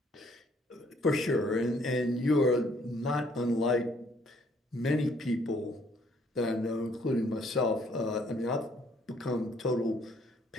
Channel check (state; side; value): normal; both; correlation 0.64